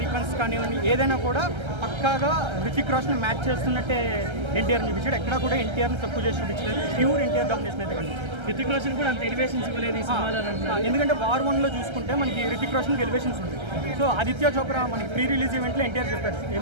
సీక్వెన్స్ కానివ్వండి, ఏదైనా కూడా పక్కాగా హృతిక్ రోషన్ మ్యాచ్ చేస్తున్నట్టే ఎన్టీఆర్ చూపించాడు. ఎక్కడ కూడా ఎన్టీఆర్ని తక్కువ చేసి చూపించలేదు. ప్యూర్ ఎన్టీఆర్ డామినేషన్ అయితే కనిపిస్తుంది. హృతిక్ రోషన్ కూడా అంత ఎలివేషన్స్ ఇవ్వలేదు ఈ సినిమాలో. ఎందుకంటే వార్ 1లో చూసుకుంటే మనకి హృతిక్ రోషన్కి ఎలివేషన్స్ ఉంటాయి. సో ఆదిత్య చోప్రా మనకి ప్రీ రిలీజ్ ఈవెంట్లో ఎన్టీఆర్ చెప్పారు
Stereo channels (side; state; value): left; late; 1.3 ms